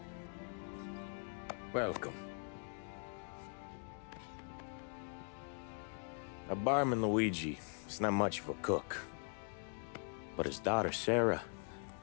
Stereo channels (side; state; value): right; silent; 50 dB below the other